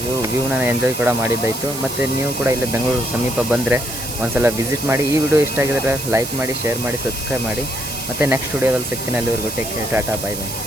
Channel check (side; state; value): right; noise; hiss, 7 dB below the sound